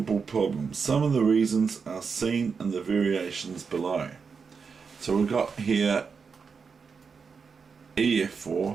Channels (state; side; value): quieter; left; 5.5 dB